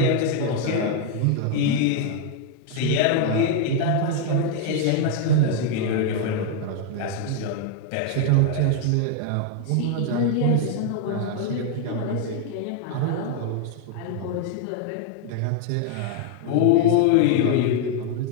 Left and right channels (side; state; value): both; different; correlation 0.00